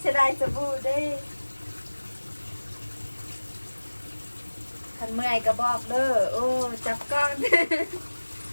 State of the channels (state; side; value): inverted; both; correlation -1.00